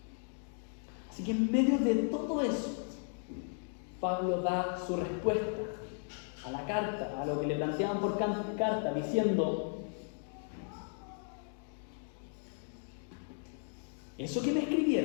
Así que en medio de todo eso, Pablo da su respuesta a la carta, a lo que le planteaban por carta, diciendo, eso que me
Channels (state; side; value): silent; right; 54 dB below the other